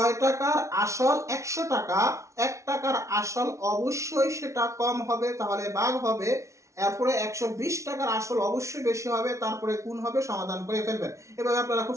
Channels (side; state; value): left; late; 0.14 ms